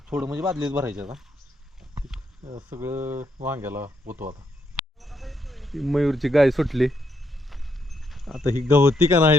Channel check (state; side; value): normal; both; correlation 0.77